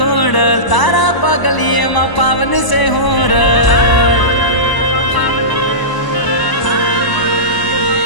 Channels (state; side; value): late; right; 1.0 ms